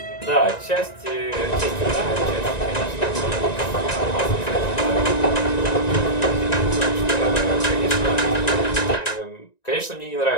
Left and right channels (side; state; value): right; late; 1.9 ms